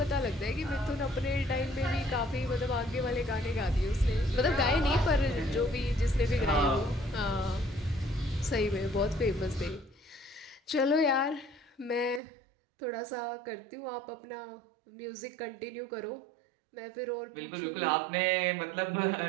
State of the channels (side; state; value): left; drops out; at 12.2 s